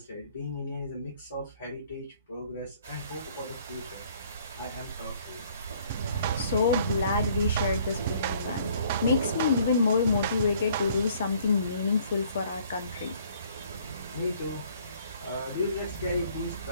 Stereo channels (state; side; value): inverted; both; correlation -0.59